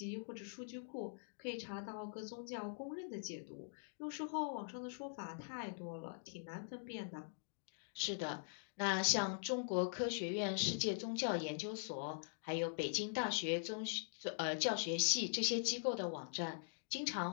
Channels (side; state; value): right; silent; digital silence